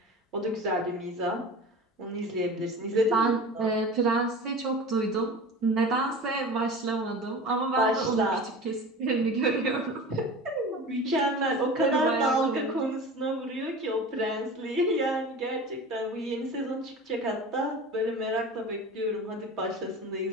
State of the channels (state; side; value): normal; both; correlation 0.35